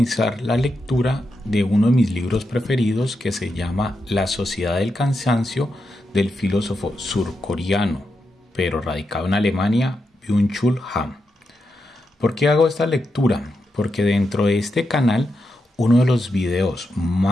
la lectura de uno de mis libros preferidos que se llama La Sociedad del Cansancio del filósofo surcoreano, pero radicado en Alemania, Byung-Chul Han. ¿Por qué hago esta lectura? Porque dentro de este canal uno de los videos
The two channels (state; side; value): normal; both; correlation 0.86